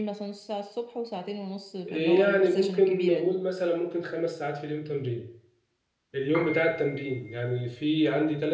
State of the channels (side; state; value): both; identical; correlation 1.00